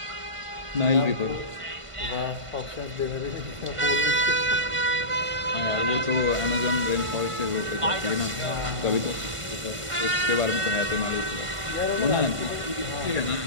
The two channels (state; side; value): late; left; 1.5 ms